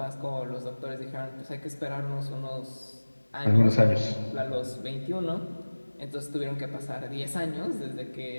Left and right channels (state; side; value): inverted; both; correlation -1.00